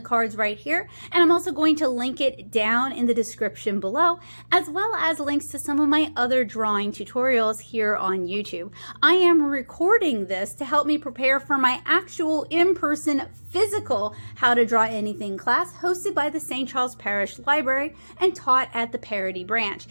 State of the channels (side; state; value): both; inverted; correlation -1.00